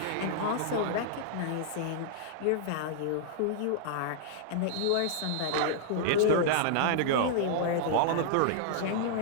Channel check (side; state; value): both; different; correlation -0.02